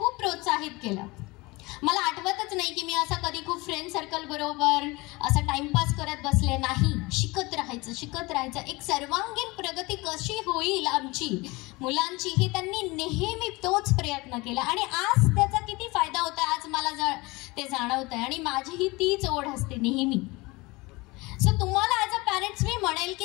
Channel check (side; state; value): right; quieter; 23.5 dB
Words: प्रोत्साहित केलं. मला आठवतच नाही की मी असं कधी खूप फ्रेंड सर्कल बरोबर असं टाइमपास करत बसले नाही. शिकत राहायचं, शिकत राहायचं. एक सर्वांगीण प्रगती कशी होईल आमची मुलांची हे त्यांनी नेहमी तोच प्रयत्न केला. आणि आज त्याचा किती फायदा होता आज मला ते जाणवत आहे. आणि माझीही तीच ओढ असते नेहमी. सो तुम्हाला ॲज अ पॅरेंट्स मी म्हणेल